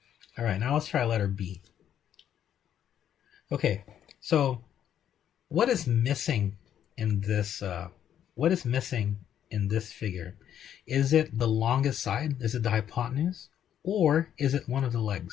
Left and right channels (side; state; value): right; quieter; 10.0 dB